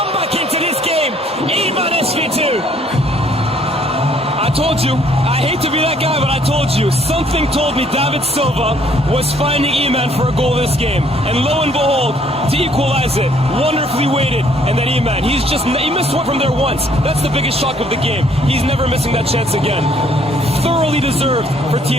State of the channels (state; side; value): normal; both; correlation 0.63